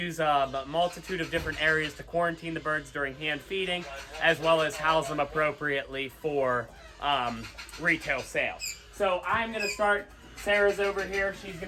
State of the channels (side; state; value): both; identical; correlation 1.00